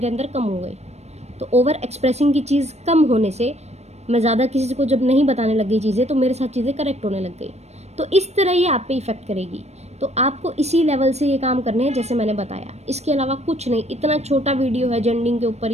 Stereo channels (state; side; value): late; left; 0.31 ms